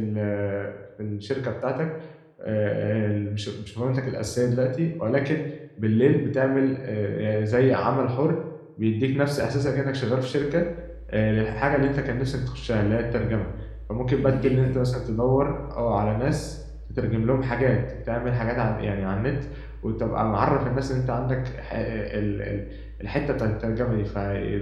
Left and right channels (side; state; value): both; identical; correlation 1.00